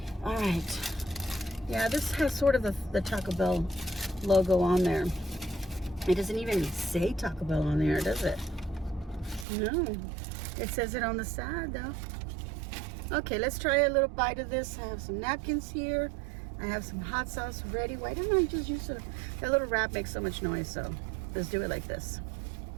All right. Yeah, this has sort of the Taco Bell logo on there. It doesn't even say Taco Bell on there, does it? No. It says it on the side though. Okay, let's try a little bite of this. I have some napkins here. I have some hot sauce ready. Why don't I just use it? That little wrap makes so much noise, so let's do it like this.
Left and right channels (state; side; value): drops out; left; at 9.5 s